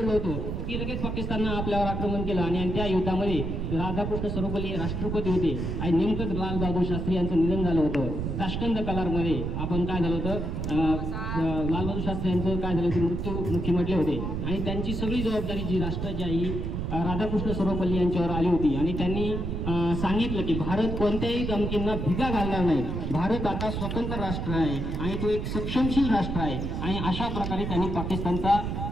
होतो की लगेच पाकिस्ताननं आपल्यावर आक्रमण केलं आणि त्या युद्धामध्ये राधाकृष्ण सर्वपल्ली राष्ट्रपती होते आणि नेमकंच लाल बहादूर शास्त्री यांचं निधन झालं होतं. ताश्कंद कलारमध्ये आपण काय झालं होतं, लाल बहादूर शास्त्री यांचं काय झालं ते मृत्युमुखी म्हटले होते आणि त्यांची सगळी जबाबदारी जी राष्ट्राची आई राधाकृष्ण सर्वपल्ली यांच्यावर आली होती आणि त्यांनी सांगितलं की भारत कोणत्याही धमकींना भिगा घालणार नाही. भारत आता स्वतंत्र राष्ट्र आहे आणि तो एक सक्षमशील राष्ट्र आहे आणि अशा प्रकारे त्यांनी पाकिस्तानचा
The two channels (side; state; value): right; noise; rumble, 3 dB below the sound